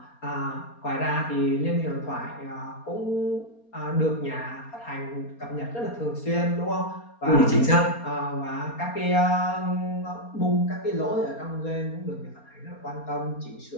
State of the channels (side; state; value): right; late; 4.3 ms